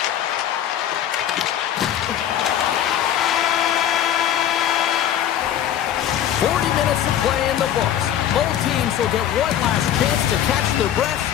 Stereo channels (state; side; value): quieter; right; 10.6 dB